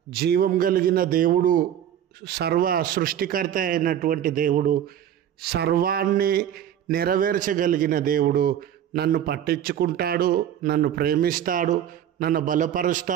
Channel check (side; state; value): left; quieter; 10.2 dB